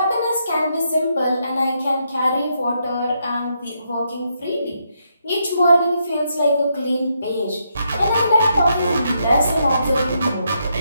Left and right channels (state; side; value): inverted; both; correlation -0.79